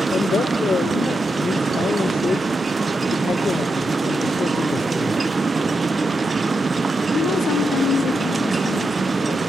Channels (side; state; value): both; normal; correlation 0.86